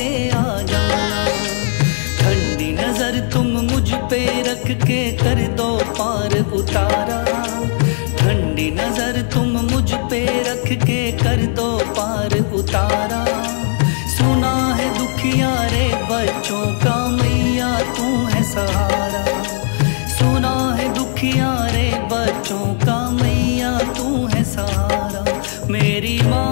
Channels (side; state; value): right; silent; digital silence